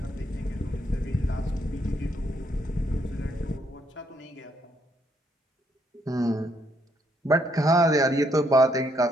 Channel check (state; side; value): normal; both; correlation 0.72